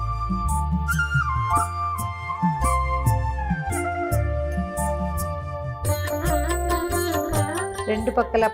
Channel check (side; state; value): both; identical; correlation 1.00